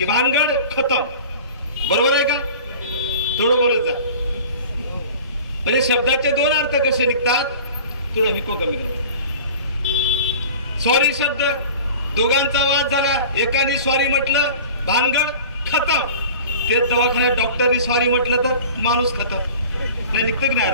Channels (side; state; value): both; inverted; correlation -0.41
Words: भानगड खतम। बरोबर आहे का? थोडं बोलत जा। म्हणजे शब्दाचे 2 अर्थ कसे निघतात, थोडं हिको कमी करा। सॉरी शब्द, दोघांचा वाद झाला, एकाने सॉरी म्हटलं, भानगड खतम। तेच दवाखान्यात डॉक्टरनी सॉरी म्हटलं तर माणूस खतम, निघतं की नाही?